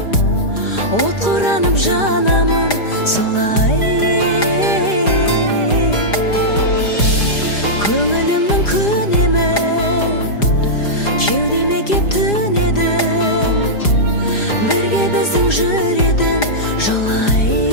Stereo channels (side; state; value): right; late; 4.9 ms